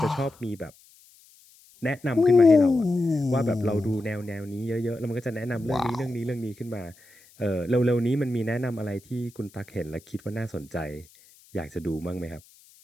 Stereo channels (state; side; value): noise; left; hiss, 27 dB below the sound